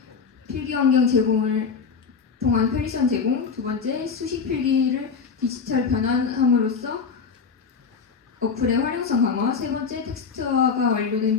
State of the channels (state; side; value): quieter; right; 5.6 dB